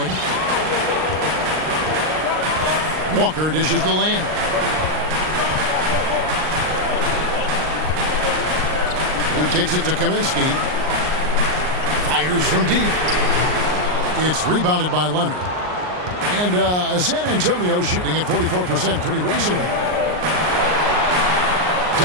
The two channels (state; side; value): late; left; 39 ms